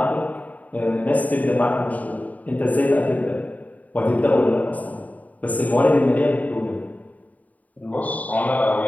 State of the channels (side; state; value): right; late; 0.074 ms